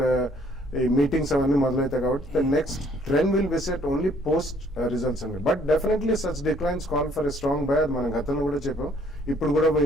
ఈ మీటింగ్స్ అవన్నీ మొదలవుతాయి. కాబట్టి the next trend will be set only post results అండి. But definitely such declines call for a strong buy, అది మనం గతంలో కూడా చెప్పాం, ఇప్పుడు కూడా we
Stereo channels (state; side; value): normal; both; correlation 0.62